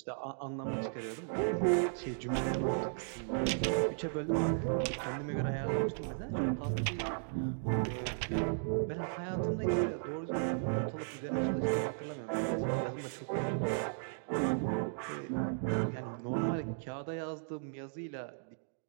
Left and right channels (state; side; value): silent; left; digital silence